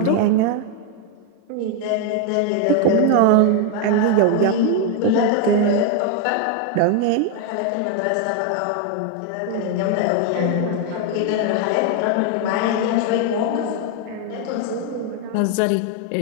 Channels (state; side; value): different; both; correlation 0.01